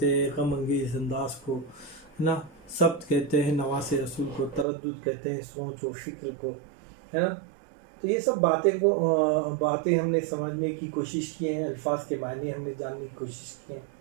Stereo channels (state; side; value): drops out; left; at 4.7 s